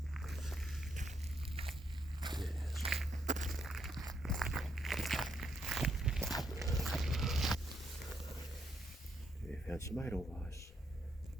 Found some edelweiss.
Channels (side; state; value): both; normal; correlation 0.76